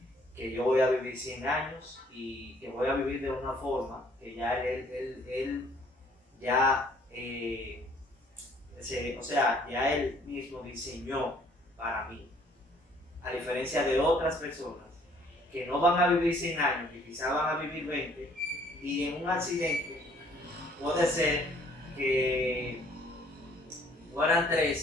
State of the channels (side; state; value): both; normal; correlation 0.60